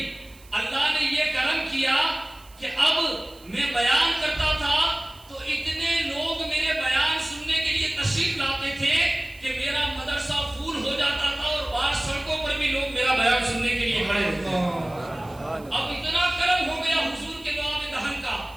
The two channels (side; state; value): right; noise; hiss, 25 dB below the sound